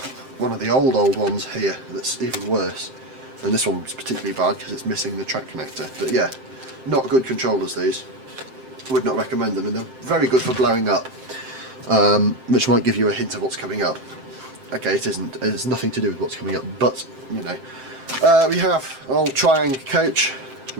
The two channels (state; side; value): late; left; 7.7 ms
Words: one of the old ones here that's even worse. And this one's particularly bad because it's missing the track connector. But yeah, not good controllers these. Would not recommend them, and they're very good for blowing up, which might give you a hint of what's coming up. Okay, it isn't. It's nothing to do with what's coming up, but you know. We have an old Triang coach,